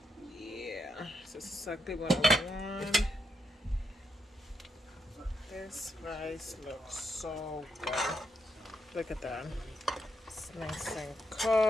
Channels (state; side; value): normal; both; correlation 0.80